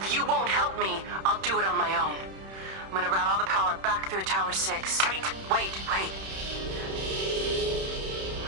you won't help me, I'll do it on my own. I'm gonna route all the power back through Tower 6. Kate! Wait.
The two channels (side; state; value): left; late; 31 ms